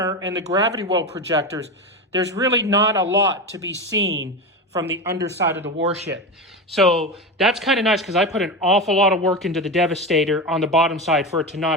and the gravity well projectors, there's really not a lot to be seen from the underside of the warship. So that's kind of nice because I put an awful lot of work into the Devastator on the bottom side for it to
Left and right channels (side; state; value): both; normal; correlation 0.20